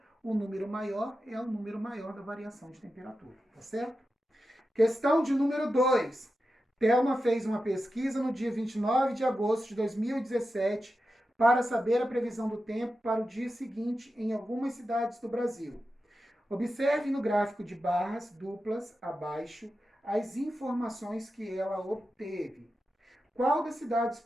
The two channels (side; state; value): both; normal; correlation 0.91